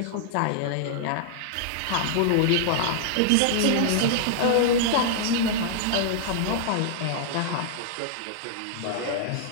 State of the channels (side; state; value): both; different; correlation -0.01